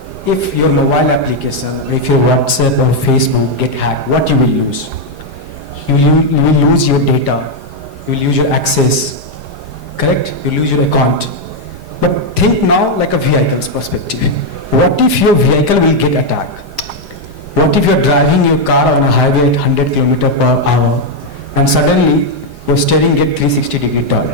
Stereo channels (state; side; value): late; left; 4.9 ms